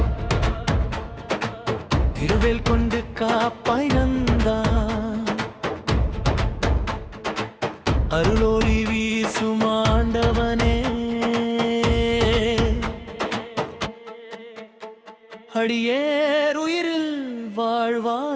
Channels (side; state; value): both; identical; correlation 1.00